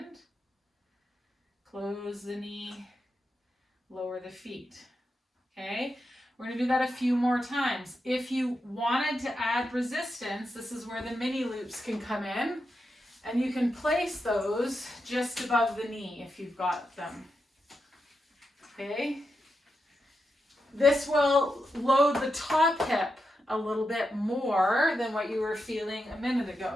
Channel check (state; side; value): normal; both; correlation 0.87